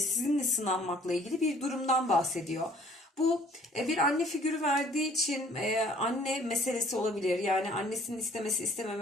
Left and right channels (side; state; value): both; normal; correlation 0.57